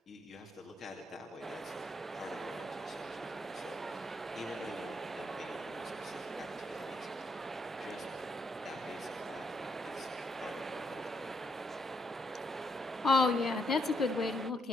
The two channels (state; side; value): normal; both; correlation 0.76